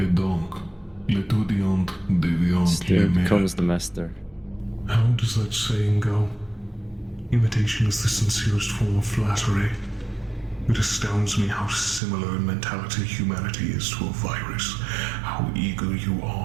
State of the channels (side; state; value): left; drops out; at 12.0 s